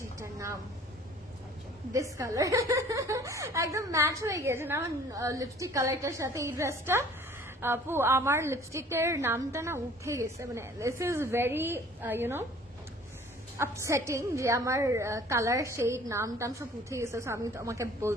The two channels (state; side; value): normal; both; correlation 0.51